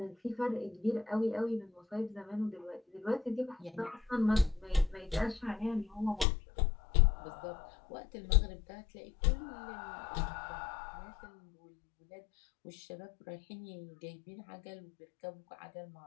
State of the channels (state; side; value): drops out; right; at 6.2 s